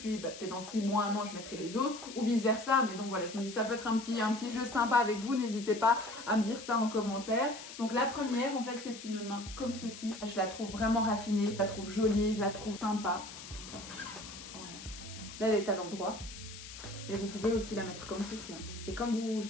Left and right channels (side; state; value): left; noise; hiss, 13 dB below the sound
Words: peut-être dans 6 mois, 1 an, je mettrai les autres, ou vice-versa. Mais donc voilà, je me dis ça peut être un petit jeu sympa avec vous. N'hésitez pas à me dire ça en commentaire. Donc la première, en fait, c'est une main comme ceci. Je la trouve vraiment raffinée, je la trouve jolie, je la trouve sympa. Voilà. Là, elle est à l'endroit. Et vous pouvez aussi la mettre comme ceci. C'est comme vous le